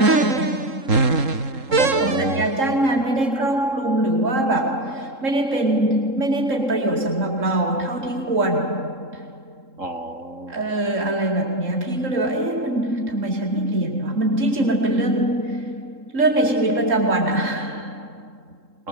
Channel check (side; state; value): left; late; 3.7 ms